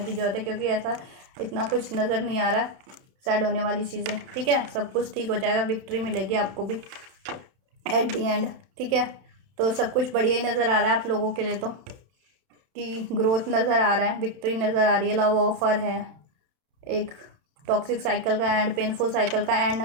की ज़रूरत है, क्योंकि ऐसा इतना कुछ नज़र नहीं आ रहा सैड होने वाली चीज़ें, ठीक है। सब कुछ ठीक हो जाएगा, विक्ट्री मिलेगी आपको भी एट दी एंड, ठीक है। तो सब कुछ बढ़िया ही नज़र आ रहा है आप लोगों के लिए, तो कि ग्रोथ नज़र आ रहा है, विक्ट्री नज़र आ रही है, लव ऑफर है, एक टॉक्सिक साइकिल का एंड, पेनफुल साइकिल का एंड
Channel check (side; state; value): left; late; 31 ms